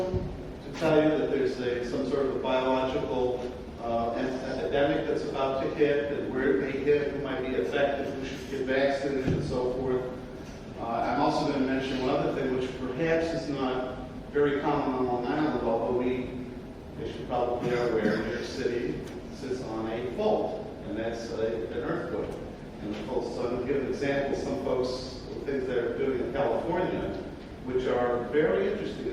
to tell you that there's some sort of a biological epidemic that's about to hit, and where it may hit, who might be affected, who should get vaccinated, and so forth. I'm also going to mention one other thing, which perhaps is not very common on Long Island, although they should probably be aware, New York City sits on a fault, and that's an earthquake. And of course, so to give an example, some folks, things they're doing in California, which are very interesting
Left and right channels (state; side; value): identical; both; correlation 1.00